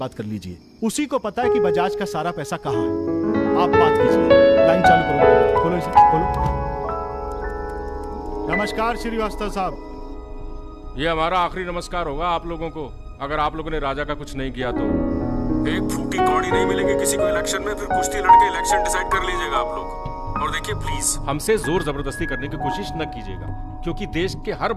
कर लीजिए। उसी को पता है कि बजाज का सारा पैसा कहाँ है। आप बात कीजिए। लाइन चालू करो, खोलो इसे, खोलो। नमस्कार श्रीवास्तव साहब। ये हमारा आखिरी नमस्कार होगा आप लोगों को, अगर आप लोगों ने राजा का कुछ नहीं किया तो। एक फूटी कौड़ी नहीं मिलेगी किसी को इलेक्शन में, फिर कुश्ती लड़के इलेक्शन डिसाइड कर लीजिएगा आप लोग। और देखिए प्लीज हमसे जोर जबरदस्ती करने की कोशिश न कीजिएगा, क्योंकि देश के हर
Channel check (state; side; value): identical; both; correlation 1.00